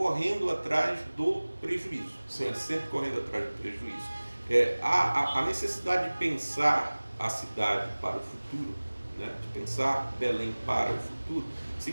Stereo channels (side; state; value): both; inverted; correlation -1.00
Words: atrás do prejuízo, né, sempre correndo atrás do prejuízo. A necessidade de pensar a cidade para o futuro, né, de pensar Belém para o futuro,